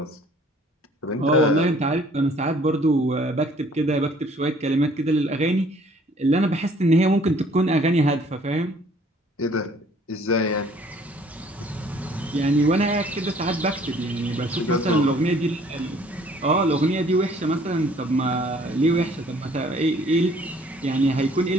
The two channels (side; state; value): both; normal; correlation 0.57